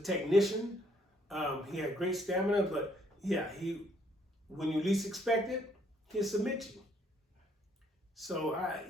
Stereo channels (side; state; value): both; normal; correlation 0.68